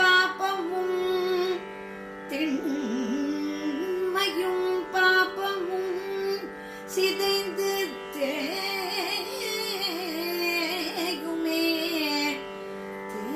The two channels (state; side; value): identical; both; correlation 1.00